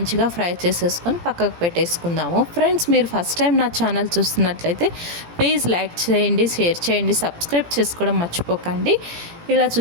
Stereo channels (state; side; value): late; left; 17 ms